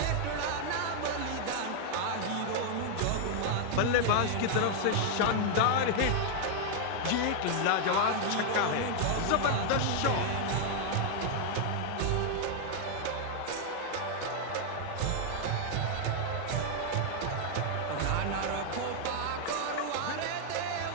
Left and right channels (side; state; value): both; different; correlation 0.00